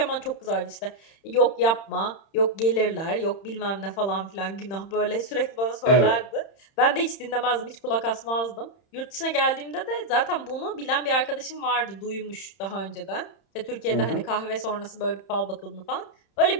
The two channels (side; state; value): right; late; 31 ms